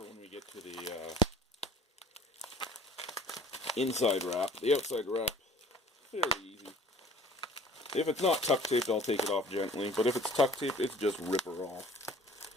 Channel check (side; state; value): both; normal; correlation 0.51